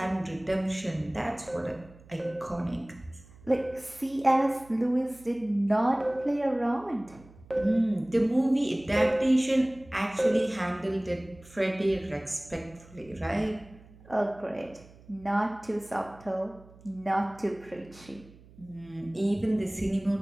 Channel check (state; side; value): noise; right; hum, 23 dB below the sound